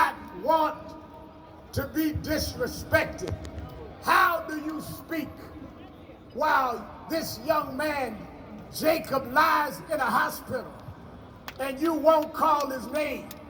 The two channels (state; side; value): identical; both; correlation 1.00